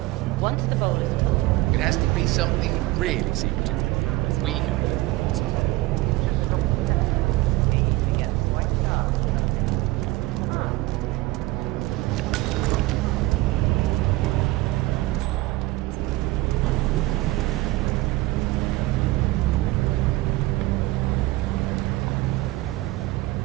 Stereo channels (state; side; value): quieter; left; 19.2 dB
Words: once the bowl is full, It has to be something really secretive. We go.